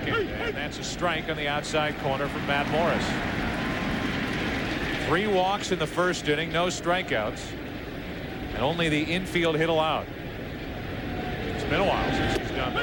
And that's a strike on the outside corner from Matt Morris. 3 walks in the first inning, no strikeouts, and only the infield hit allowed. It's been a while since he's done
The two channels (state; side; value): identical; both; correlation 1.00